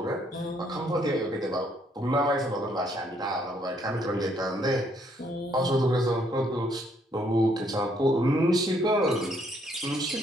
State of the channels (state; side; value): normal; both; correlation 0.69